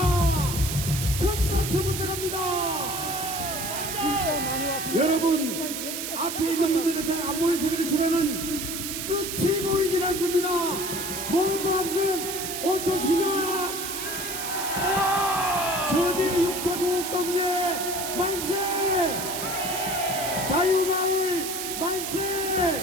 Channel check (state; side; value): noise; right; hiss, 5 dB below the sound